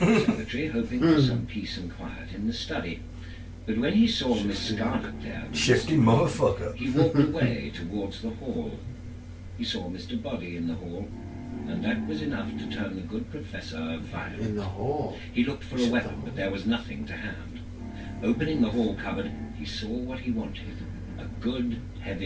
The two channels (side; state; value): both; identical; correlation 1.00